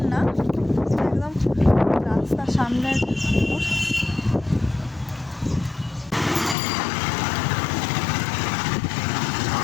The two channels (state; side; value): drops out; right; at 6.6 s